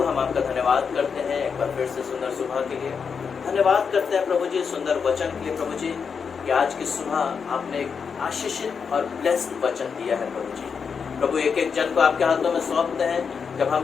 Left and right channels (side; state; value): right; quieter; 6.1 dB